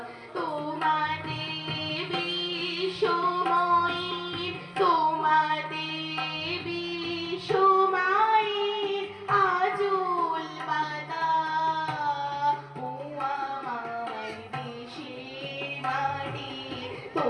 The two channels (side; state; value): both; identical; correlation 1.00